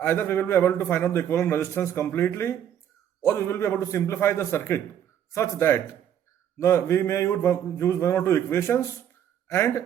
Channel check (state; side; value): quieter; left; 9.9 dB